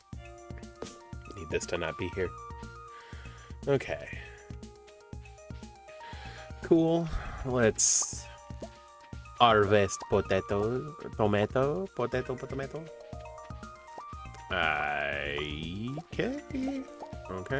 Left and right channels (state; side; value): identical; both; correlation 1.00